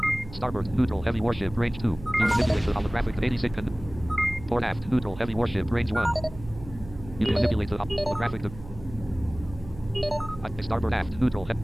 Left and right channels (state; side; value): noise; right; hum, 15 dB below the sound